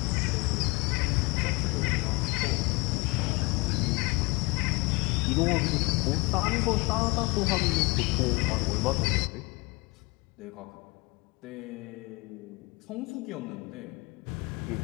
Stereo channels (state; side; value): quieter; right; 26.5 dB